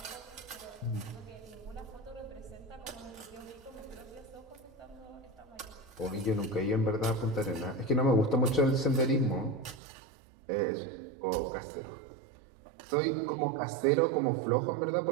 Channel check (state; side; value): drops out; left; at 9.8 s